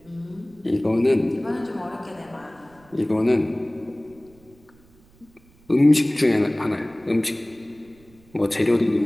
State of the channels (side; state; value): right; noise; rumble, 29 dB below the sound